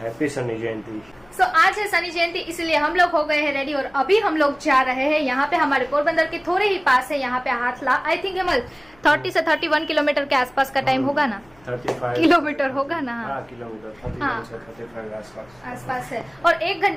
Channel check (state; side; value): noise; left; hum, 29 dB below the sound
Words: हैप्पी शनि जयंती। सो आज है शनि जयंती, इसलिए हम लोग हो गए हैं रेडी और अभी हम लोग जा रहे हैं यहाँ पे, हमारे पोरबंदर के थोड़े ही पास है, यहाँ पे हाथला। आई थिंक हेमल 30 से 31 किलोमीटर के आसपास का टाइम होगा ना, 35 किलोमीटर होगा ना। हाँ, किलोमीटर 31 से 35 आसपास है। और 1